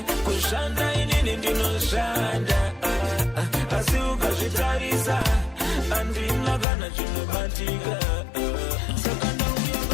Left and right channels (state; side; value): drops out; right; at 6.7 s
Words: kushanda inini ndinoshanda. Asi ukazvitarisa, handina kana chinobatika. Saka